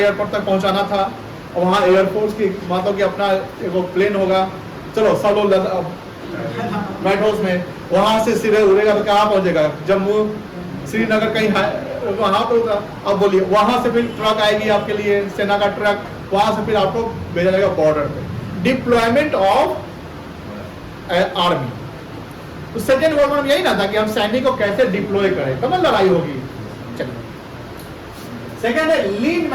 तक पहुंचाना था, और वहाँ एयरफोर्स की मानो कि अपना एक प्लेन होगा, चलो सब लोग बैठो उसमें। वहां से सीधे उड़ेगा तो कहाँ पहुंचेगा, जम्मू, श्रीनगर, कहीं वहां पे होगा। अब बोलिए वहां से फिर ट्रक आएगी आपके लिए, सेना का ट्रक, वहां से फिर आपको भेजा जाएगा बॉर्डर पे। Deployment of army. तो सेकेंड वर्ल्ड वॉर में यही ना था कि हम सैनिक को कैसे डिप्लॉय करें, तब लड़ाई होगी। चलिए सेकेंड है लीन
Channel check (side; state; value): both; identical; correlation 1.00